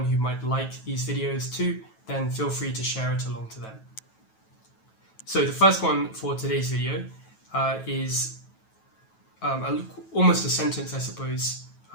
who might like these videos too, then feel free to share it along to them. So the first one for today's video is almost a sentence, I suppose,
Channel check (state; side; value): late; right; 9.2 ms